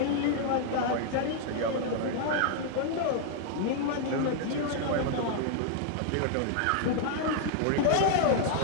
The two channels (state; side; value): different; both; correlation 0.00